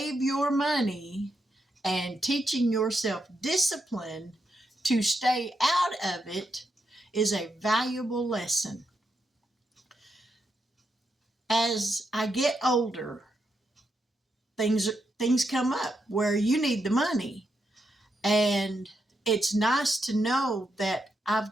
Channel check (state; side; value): normal; both; correlation 0.82